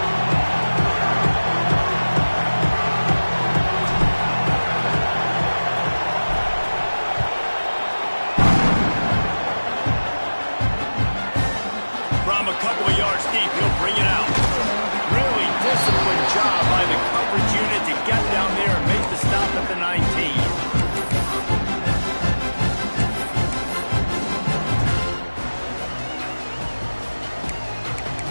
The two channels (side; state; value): both; inverted; correlation -1.00